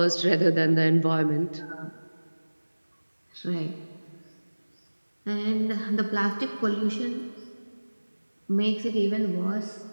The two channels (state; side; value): inverted; both; correlation -1.00